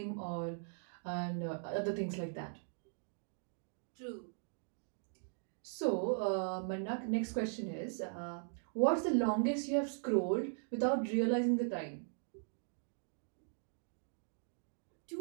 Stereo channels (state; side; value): silent; left; digital silence